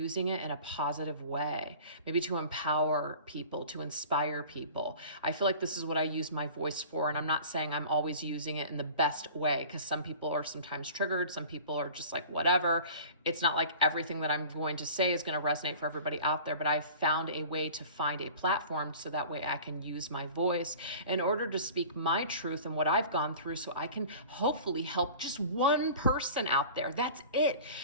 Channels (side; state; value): both; inverted; correlation -0.42